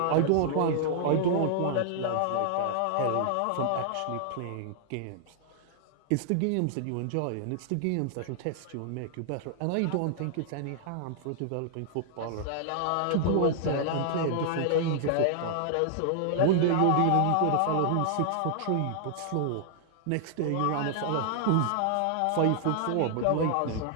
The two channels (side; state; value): both; different; correlation -0.01